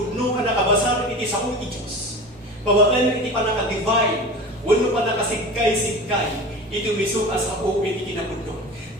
anak kabasar iti sao iti Diyos. Pabaan iti panaka-divine, wano panakasigkay-sigkay, iti miso asao iti kinapudno.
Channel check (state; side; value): normal; both; correlation 0.33